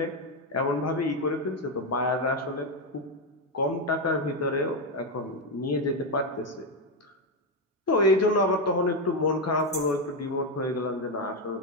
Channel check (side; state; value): both; normal; correlation 0.07